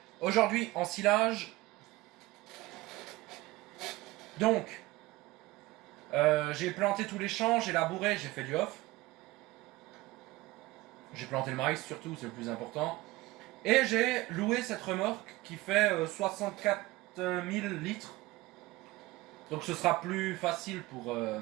Aujourd'hui en silage. Donc, j'ai planté tous les champs, j'ai labouré, j'ai fait du off. J'ai planté le maïs surtout, c'est le plus important. Et j'ai loué cette remorque qui fait 64 000 litres. Donc ce sera plus facile pour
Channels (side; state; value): left; quieter; 19.5 dB